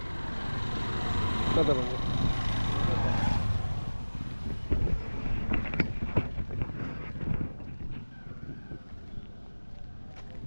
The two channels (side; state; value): both; inverted; correlation -1.00